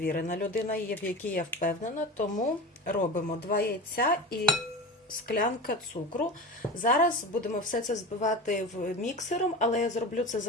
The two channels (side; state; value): both; normal; correlation 0.31